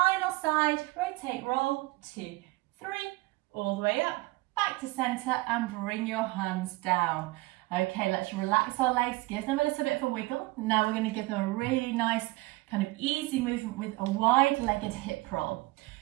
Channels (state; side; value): quieter; left; 21.5 dB